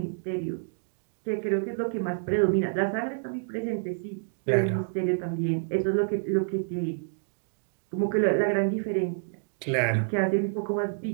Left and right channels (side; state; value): left; silent; digital silence